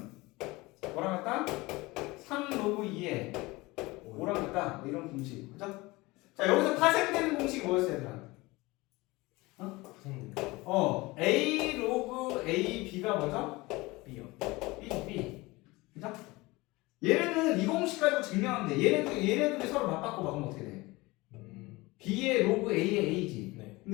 뭐랑 같다? 3 로그 2의 5랑 같다. 뭐 이런 공식, 그죠? 자, 여기서 파생되는 공식이 뭐였어요, 얘들아? 선생님. A 로그 A B가 뭐죠? B요. B. 그죠? 얘네는 이 공식 가지고 증명하면 돼. 얘네들이 서로 맞바꿔 봐보면 어떻게 돼? B의 로그 A의 A지. 네.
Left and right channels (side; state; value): right; quieter; 22.0 dB